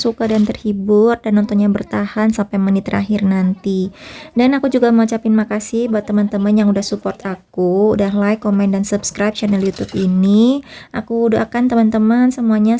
dan terhibur dan nontonnya bertahan sampai menit terakhir nanti. Dan aku juga mau ucapin makasih buat teman-teman yang udah support aku, udah like, komen, dan subscribe channel YouTube ini. Aku doakan teman-teman semuanya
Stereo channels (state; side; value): identical; both; correlation 1.00